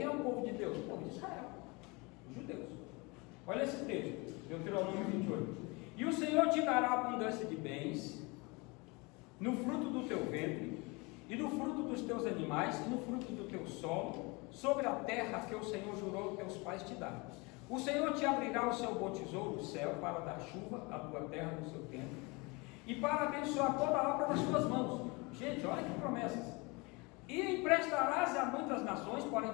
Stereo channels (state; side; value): quieter; right; 27.1 dB